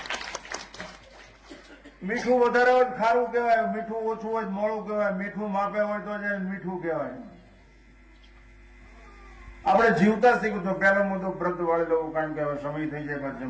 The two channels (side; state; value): both; identical; correlation 1.00